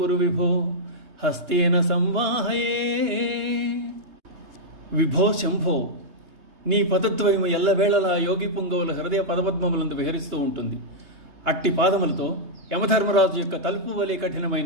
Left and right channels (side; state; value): left; late; 3.3 ms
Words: విభో హస్తేన సంవాహయే. విభో శంభో, నీ పదద్వయము ఎల్లవేళలా యోగి పుంగవుల హృదయ పదపద్మములందు విహరిస్తూ ఉంటుంది. అట్టి పాదములతో యమధర్మరాజు యొక్క తలుపు వలె